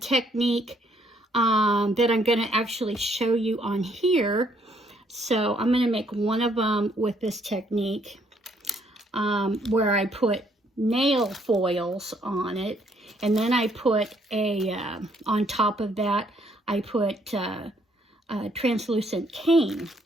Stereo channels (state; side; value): normal; both; correlation 0.68